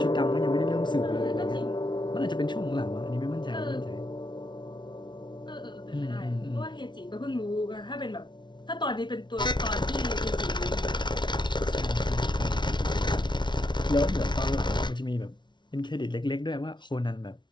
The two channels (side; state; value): right; late; 0.22 ms